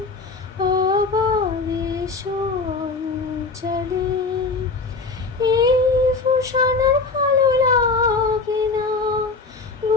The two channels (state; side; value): quieter; right; 4.0 dB